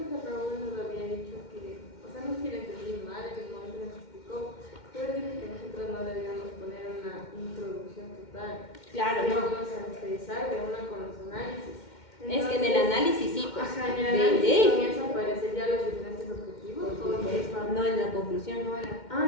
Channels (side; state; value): right; late; 2.1 ms